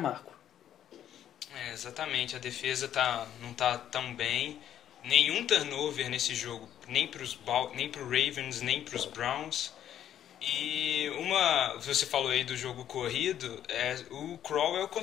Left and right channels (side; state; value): right; quieter; 10.6 dB